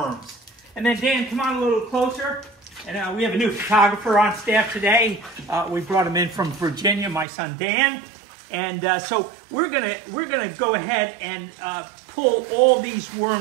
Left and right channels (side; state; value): left; drops out; at 7.2 s